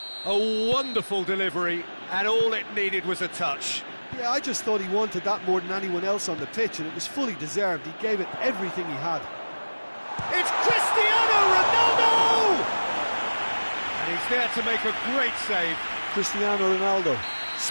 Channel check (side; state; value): both; inverted; correlation -1.00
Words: A wonderful delivery, and all it needed was a touch. Yeah, I just thought he wanted that more than anyone else on the pitch, and it was fully deserved. He gave it everything he had. It's Cristiano Ronaldo! And he's there to make a great save. Cristiano Ronaldo